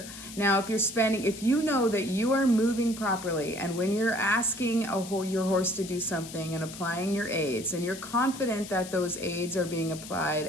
Now, if you know that you are moving properly, and when you're asking your horse to do something and applying your aids, and you're confident that those aids are being applied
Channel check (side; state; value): left; noise; hiss, 13 dB below the sound